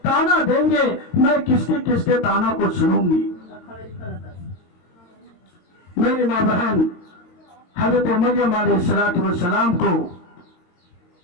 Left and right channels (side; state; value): right; late; 22 ms